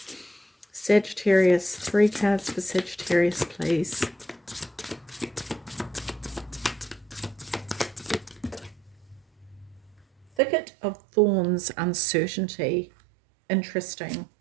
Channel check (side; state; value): left; drops out; at 10.2 s